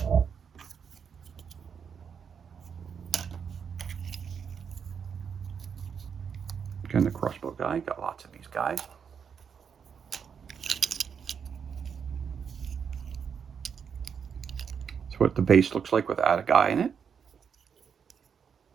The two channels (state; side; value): quieter; left; 6.9 dB